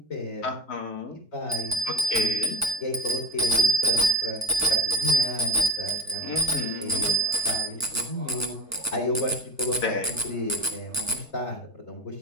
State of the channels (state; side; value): normal; both; correlation 0.23